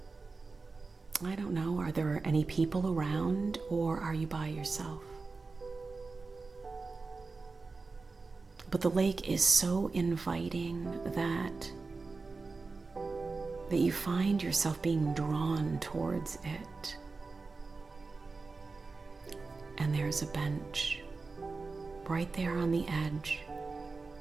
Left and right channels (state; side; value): quieter; left; 4.0 dB